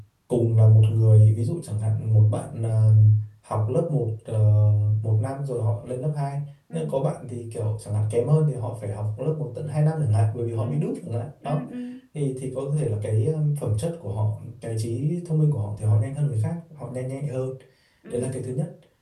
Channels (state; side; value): identical; both; correlation 1.00